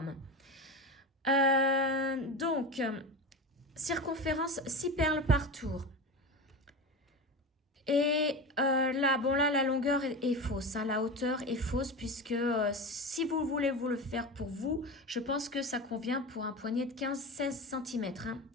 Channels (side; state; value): both; normal; correlation 0.25